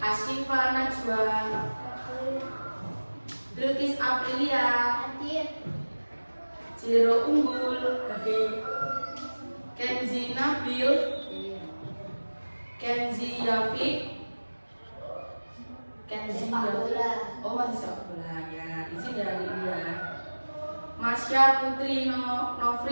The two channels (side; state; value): both; inverted; correlation -1.00